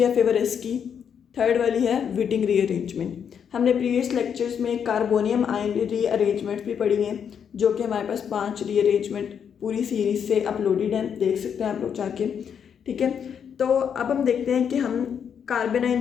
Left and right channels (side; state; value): right; quieter; 7.7 dB